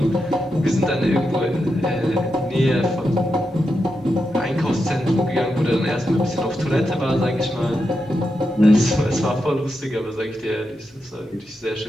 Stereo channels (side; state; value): both; normal; correlation 0.86